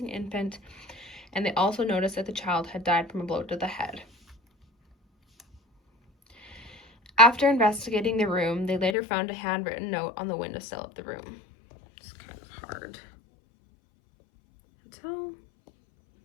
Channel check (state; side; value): drops out; right; at 9.0 s